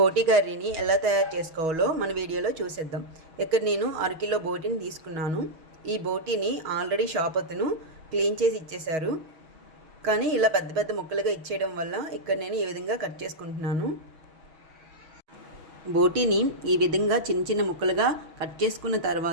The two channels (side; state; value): left; late; 6.3 ms